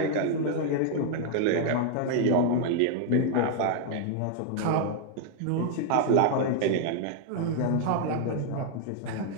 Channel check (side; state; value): both; different; correlation 0.00